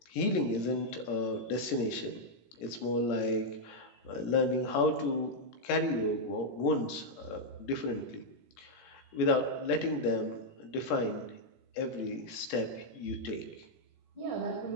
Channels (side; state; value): right; late; 17 ms